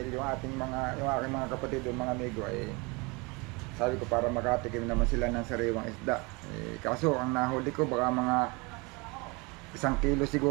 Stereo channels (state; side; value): quieter; left; 27.7 dB